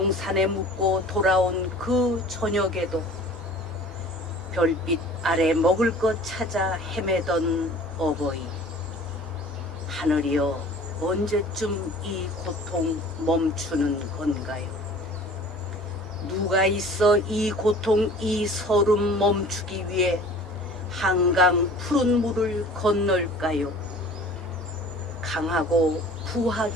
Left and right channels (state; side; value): normal; both; correlation 0.46